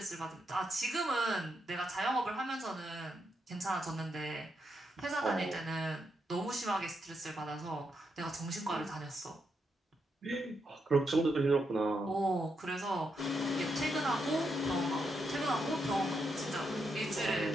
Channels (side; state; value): both; normal; correlation 0.82